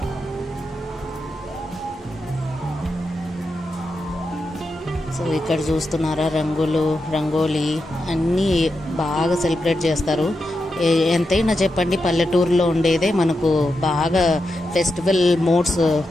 సో ఇక్కడ చూస్తున్నారా, రంగోలీ అన్నీ బాగా సెలబ్రేట్ చేస్తారు. ఎంతైనా చెప్పండి, పల్లెటూరులో ఉండేదే మనకు బాగా ఫెస్టివల్ మోడ్స్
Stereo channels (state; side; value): normal; both; correlation 0.87